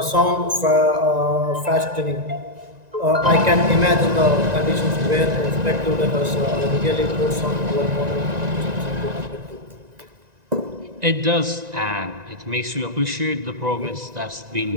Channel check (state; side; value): late; left; 1.9 ms